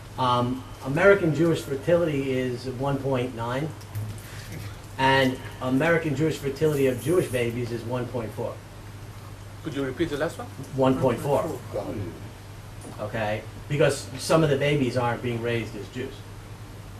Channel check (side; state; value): both; identical; correlation 1.00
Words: American Jewish fertility is 1.9, and American Jewish fertility of Jewish babies is 1.4. Could you repeat the last one? 1.4. Okay, because some of the babies aren't being raised as Jews,